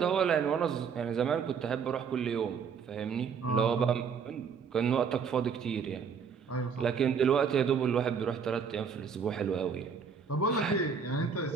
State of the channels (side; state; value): left; quieter; 6.3 dB